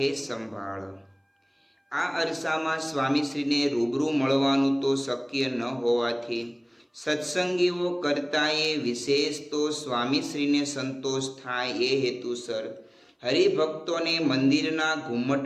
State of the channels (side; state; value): both; identical; correlation 1.00